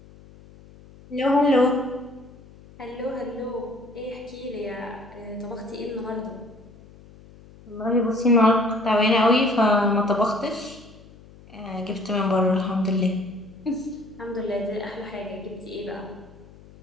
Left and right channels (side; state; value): left; noise; hum, 22 dB below the sound